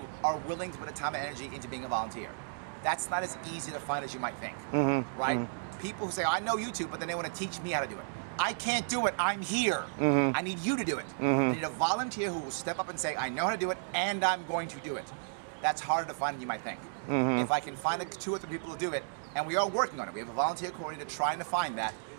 are willing to put the time and energy into being a volunteer. That's not as easy to find as you might think, right? People who say, I know YouTube, but then they want to teach me how to do it. I can't do it, I'm here. I need you to do it. I need a volunteer who will step up and say, I know how to do it, and I'm going to do it. That's harder to find than you might think. If I can find 2 or 3 people to do it, and we are working on it. We have a volunteer coordinator trying to find that.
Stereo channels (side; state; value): left; silent; digital silence